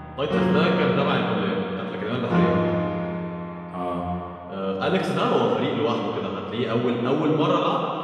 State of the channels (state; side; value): identical; both; correlation 1.00